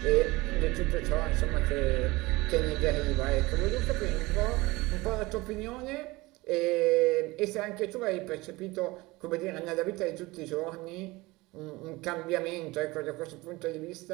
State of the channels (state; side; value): quieter; left; 21.6 dB